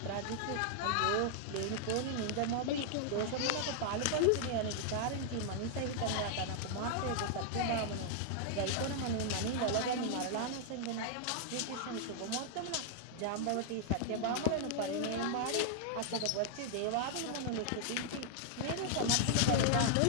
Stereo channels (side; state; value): both; different; correlation -0.01